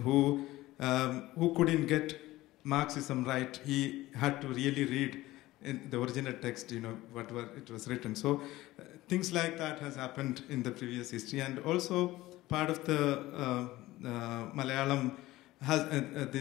who couldn't get Marxism right. He had to really read in the original text, whatever it was written. So things like that has happened in the previous history. And also part of the Malayalam has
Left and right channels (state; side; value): quieter; right; 17.4 dB